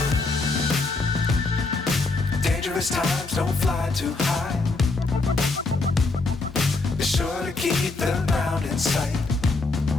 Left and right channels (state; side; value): quieter; right; 3.6 dB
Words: Times don't fly too high. Be sure to keep the ground in sight.